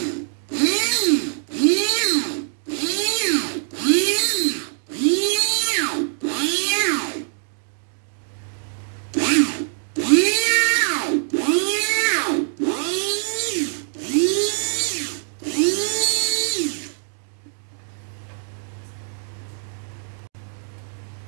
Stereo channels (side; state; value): left; silent; digital silence